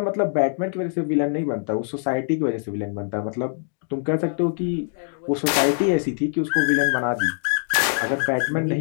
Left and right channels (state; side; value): silent; right; digital silence